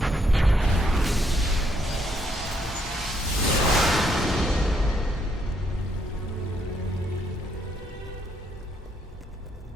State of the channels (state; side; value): normal; both; correlation 0.73